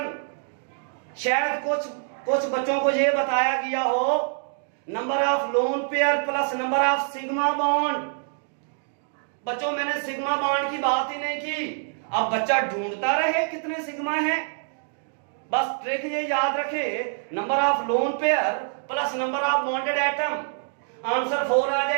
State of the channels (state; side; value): silent; left; digital silence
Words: शायद कुछ बच्चों को यह बताया गया हो number of lone pair plus number of sigma bond. बच्चों मैंने सिग्मा बॉन्ड की बात ही नहीं की। अब बच्चा ढूंढता रहे कितने सिग्मा हैं, बस ट्रिक ये याद रखे, number of lone pair plus number of bonded atom. Answer 4 आ